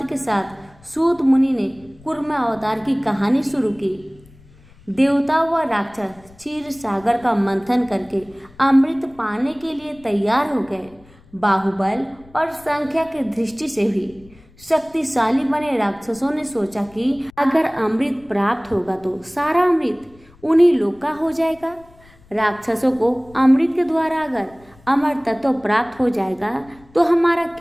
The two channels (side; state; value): left; noise; rumble, 26 dB below the sound